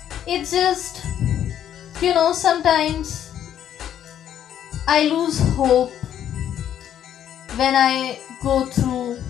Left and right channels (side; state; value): right; quieter; 10.2 dB